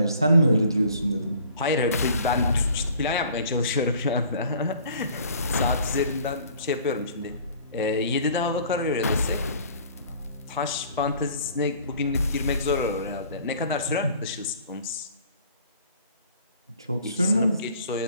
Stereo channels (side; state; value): both; inverted; correlation -0.52